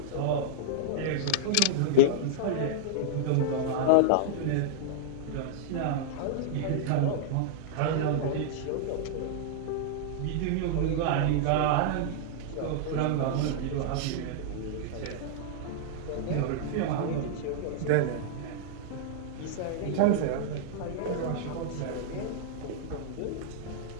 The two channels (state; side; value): different; both; correlation -0.01